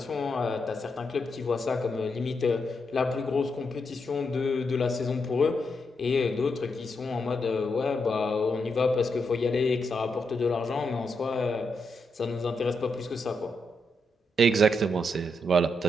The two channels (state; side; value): normal; both; correlation 0.82